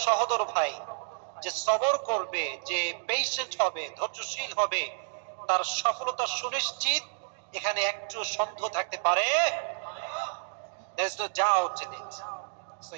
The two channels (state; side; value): silent; left; digital silence